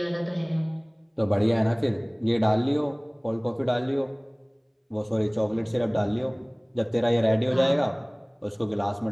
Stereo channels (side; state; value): both; identical; correlation 1.00